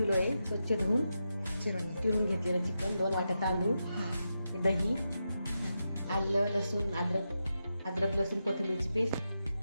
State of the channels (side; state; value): both; inverted; correlation -0.88